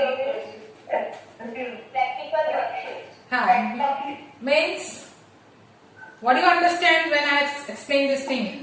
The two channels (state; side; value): identical; both; correlation 1.00